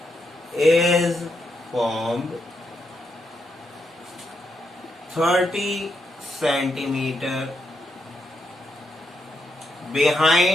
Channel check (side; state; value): both; normal; correlation 0.81